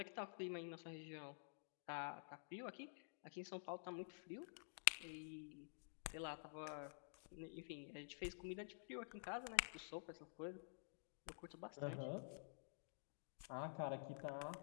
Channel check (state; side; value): silent; right; digital silence